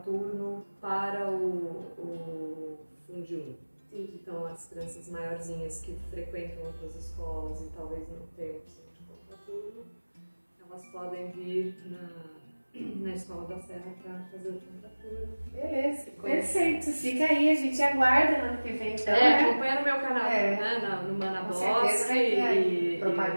para o Fundi 1. Então as crianças maiorzinhas que frequentam outras escolas e talvez não tenham opção de contraturno, elas podem vir na Escola da Serra para fazer o contraturno. Beleza, perfeito. Fica aí, a gente aguarda no ano que vem. Então, acompanha no meu canal, né, no Mana Boss. Com certeza vai ter aí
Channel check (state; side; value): inverted; both; correlation -1.00